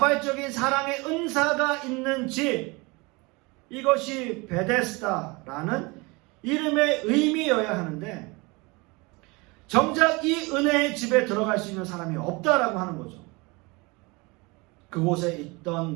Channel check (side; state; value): left; quieter; 26.1 dB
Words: 사랑의 은사가 있는 집, 이것이 베데스다라는 이름의 의미여야 하는데 정작 이 은혜의 집에 들어갈 수 있는 사람이 없다라고 하는 거죠. 그곳에 있던